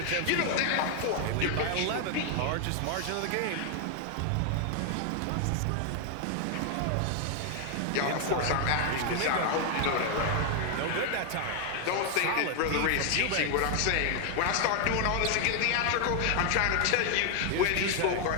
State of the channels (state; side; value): different; both; correlation 0.00